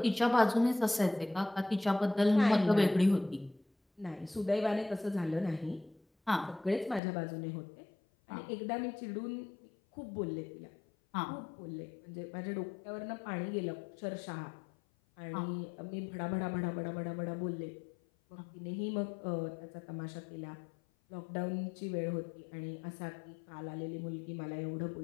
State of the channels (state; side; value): drops out; right; at 7.0 s